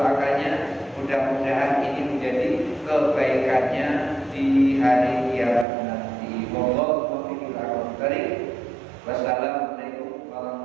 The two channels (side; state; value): left; drops out; at 5.7 s